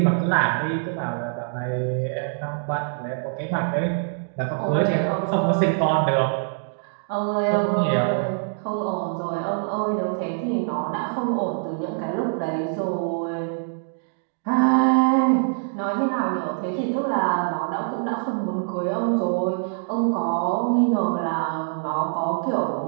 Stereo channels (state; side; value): silent; left; digital silence